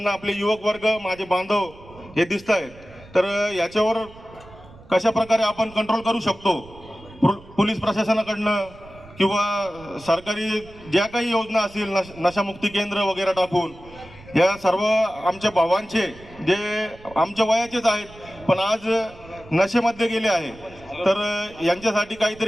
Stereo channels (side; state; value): right; noise; rumble, 21 dB below the sound